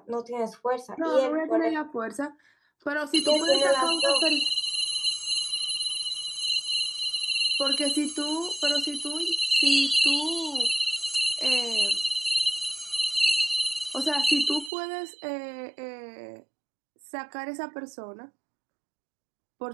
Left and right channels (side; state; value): left; drops out; at 14.7 s